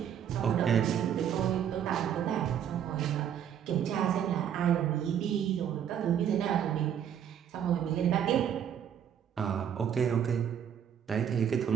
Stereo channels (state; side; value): quieter; left; 9.0 dB